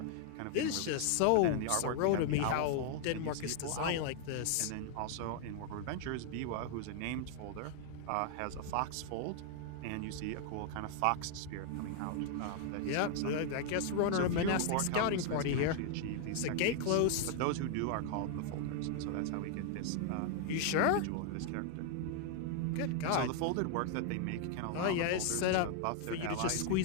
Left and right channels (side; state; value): both; different; correlation 0.00